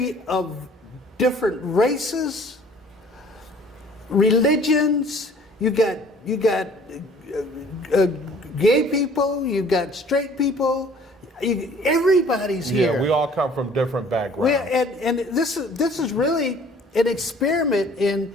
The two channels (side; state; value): both; normal; correlation 0.53